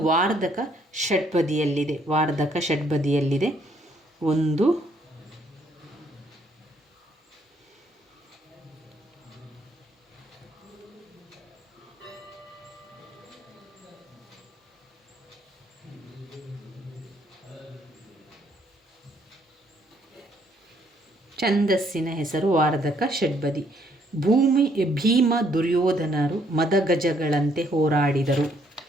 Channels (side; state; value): both; normal; correlation 0.68